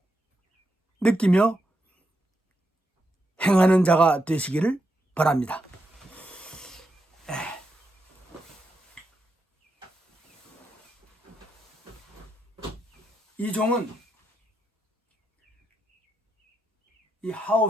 느끼며 행하는 자가 되시기를 바랍니다. 이 종은 이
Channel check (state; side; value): normal; both; correlation 0.83